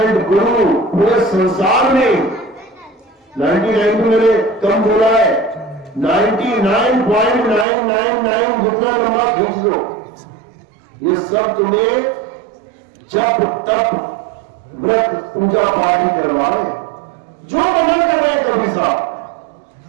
गुरु पूरे संसार में, 99 तो मैंने कम बोला है, 99.999 जितना लंबा खींच दो, ये सब तुम्हें जप तप व्रत पूजा पाठ ही करवा रहे हैं। जो मना कर रहे हैं कभी साहब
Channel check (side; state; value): left; drops out; at 7.7 s